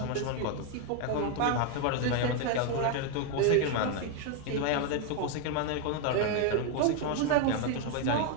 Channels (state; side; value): different; both; correlation 0.01